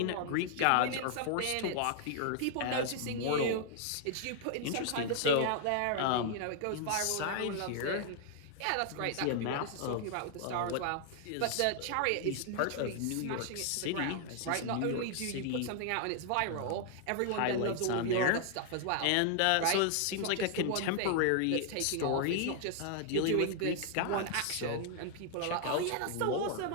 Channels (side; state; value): both; different; correlation 0.00